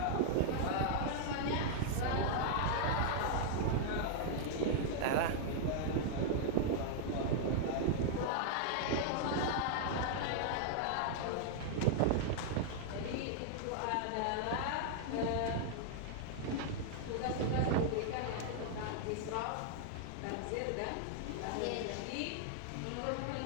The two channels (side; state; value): both; different; correlation -0.01